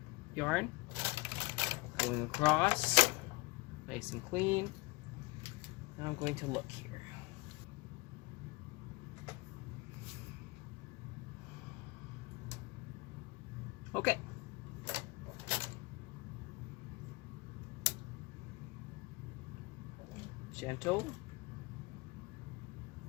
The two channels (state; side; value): quieter; right; 25.5 dB